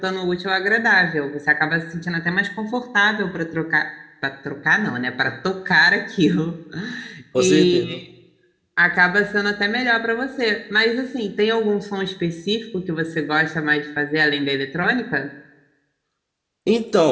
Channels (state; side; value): identical; both; correlation 1.00